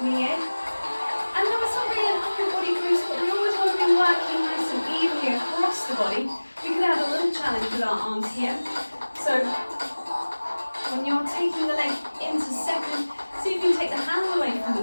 And now it's not really an upper body boost, but we always want to be working nice and evenly across the body. We could have a little challenge with our arms here. So when you're taking the leg into second, see if you can take the hands away from the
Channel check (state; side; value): inverted; both; correlation -1.00